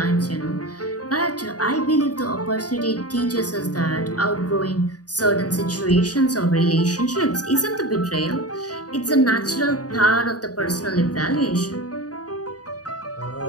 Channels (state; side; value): late; right; 0.68 ms